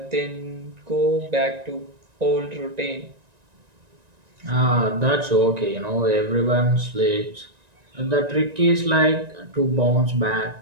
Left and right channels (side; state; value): left; late; 1.9 ms